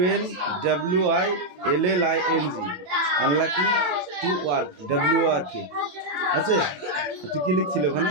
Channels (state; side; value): late; left; 27 ms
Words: আনলাকিং টু ওয়ার্ক WRK আছে তুই কি লিখছিল ওখানে